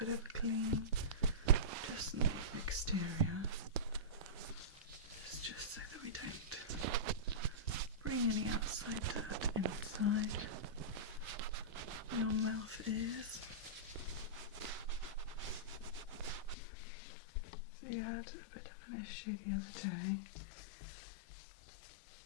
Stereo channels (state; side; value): drops out; right; at 16.6 s